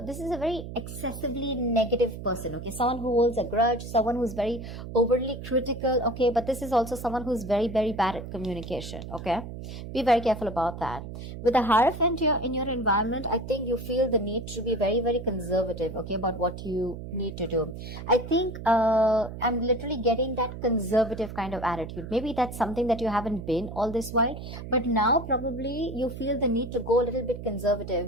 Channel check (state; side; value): noise; right; hum, 10 dB below the sound